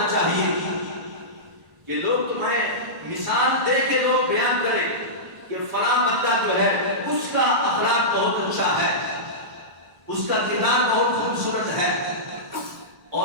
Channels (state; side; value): late; left; 1.5 ms